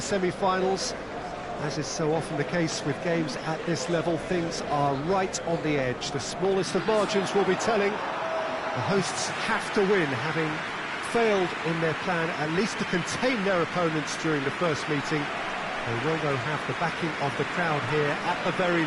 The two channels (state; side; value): identical; both; correlation 1.00